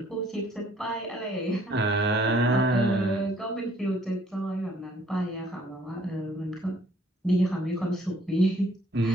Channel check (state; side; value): normal; both; correlation 0.61